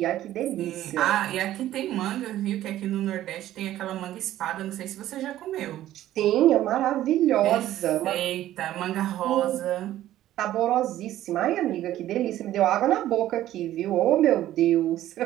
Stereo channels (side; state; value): left; quieter; 13.5 dB